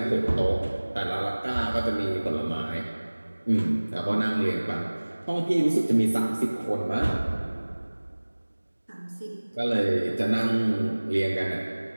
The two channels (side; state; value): both; inverted; correlation -1.00